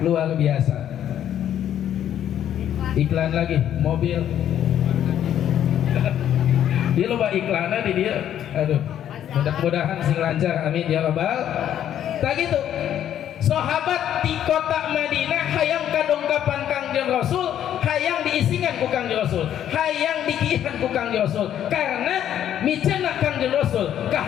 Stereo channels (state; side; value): quieter; right; 10.5 dB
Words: biasa. Iklan lagi mobil dia loba iklannya di dia. Aduh mudah-mudahan sing lancar amin ya rabbal. Tak gitu sahabat di kota Madinah hayang kadongkapan Kangjeng Rasul hayang diisingan ku Kangjeng Rasul hayang dikihan ku Kangjeng Rasul karena miceuna Kangjeng Rasul